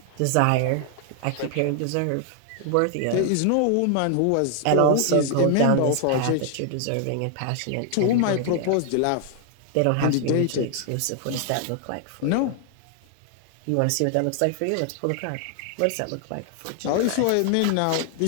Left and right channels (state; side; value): different; both; correlation 0.00